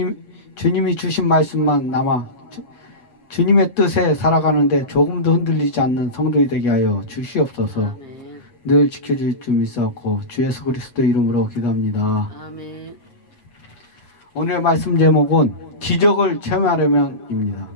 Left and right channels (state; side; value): late; right; 8.4 ms